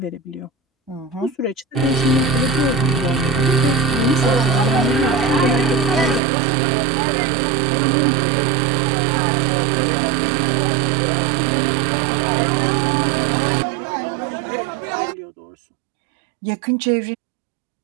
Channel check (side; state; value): left; drops out; at 6.2 s